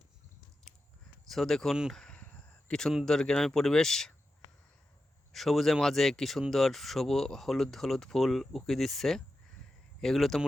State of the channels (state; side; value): normal; both; correlation 0.91